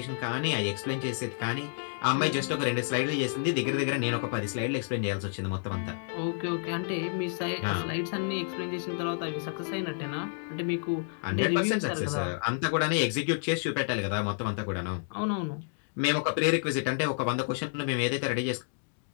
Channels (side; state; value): right; silent; digital silence